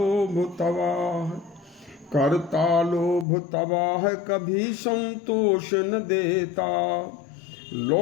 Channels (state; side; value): drops out; right; at 3.2 s